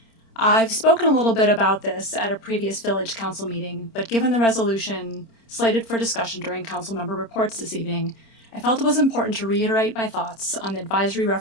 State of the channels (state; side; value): late; right; 26 ms